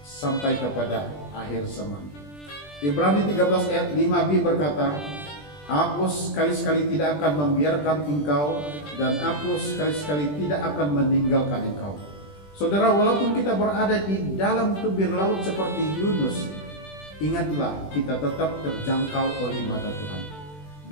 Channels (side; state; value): right; late; 20 ms